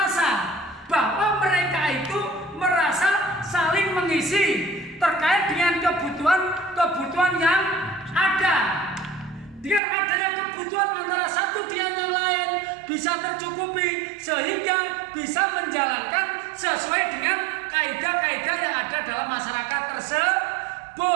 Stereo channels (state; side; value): drops out; left; at 9.8 s